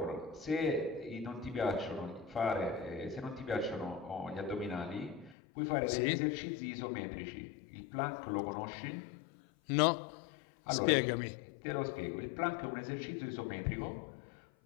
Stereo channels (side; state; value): right; drops out; at 5.4 s